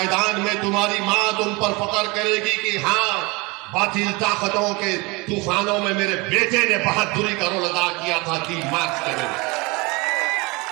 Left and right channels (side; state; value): left; quieter; 25.9 dB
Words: में तुम्हारी मां तुम पर फख्र करेगी कि हाँ, बातिल ताकतों के तूफानों में मेरे बेटे ने बहादुरी का रोल अदा किया था, 3 मार्च के दिन।